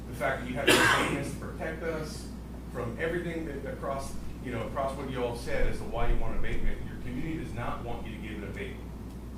fact that you have to pay us to protect us, from everything that across what you all said as to why you want an abatement. Your community does not want you to give an abatement.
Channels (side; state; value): both; identical; correlation 1.00